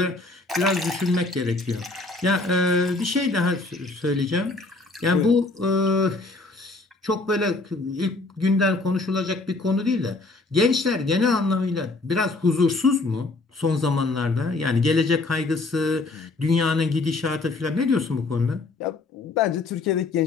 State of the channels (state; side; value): quieter; right; 3.3 dB